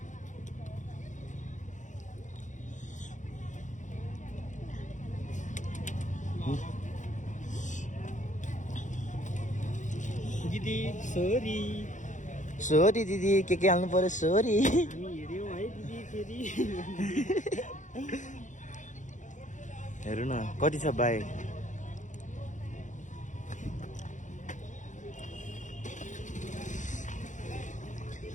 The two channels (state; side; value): late; right; 0.36 ms